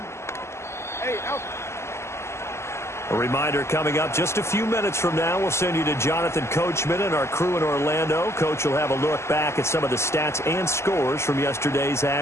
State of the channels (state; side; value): late; right; 0.13 ms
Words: A reminder coming up just a few minutes from now, we'll send you to Jonathan Coachman and our crew in Orlando. Coach will have a look back at some of the stats and scores from yesterday's